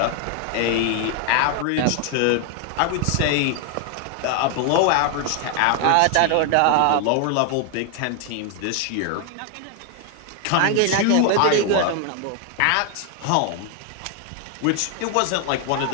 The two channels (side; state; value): both; different; correlation 0.00